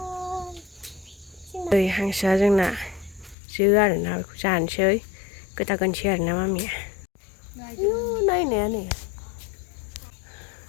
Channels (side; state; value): right; drops out; at 3.4 s